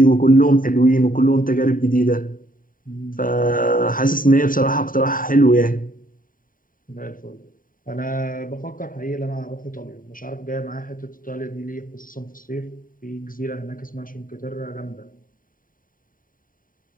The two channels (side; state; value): right; late; 0.40 ms